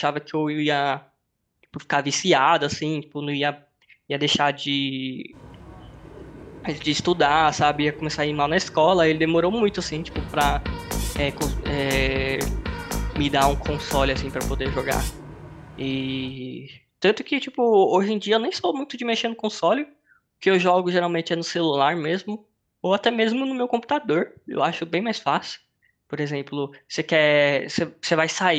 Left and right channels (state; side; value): identical; both; correlation 1.00